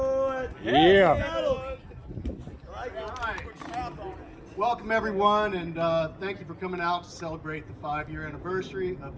Yeah. Welcome everyone, and thank you for coming out to celebrate the 5-year anniversary of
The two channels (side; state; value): both; identical; correlation 1.00